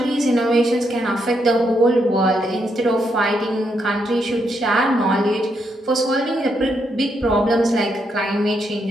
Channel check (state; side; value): normal; both; correlation 0.79